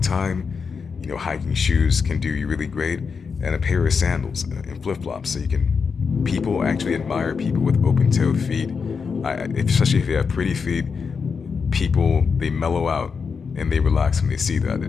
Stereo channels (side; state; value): right; quieter; 5.6 dB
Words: you know, hiking shoes can do you really great. And a pair of sandals and flip-flops, so people actually admire people with open-toe feet. Especially if they have pretty feet, people, they mellow out and they relax when they see that.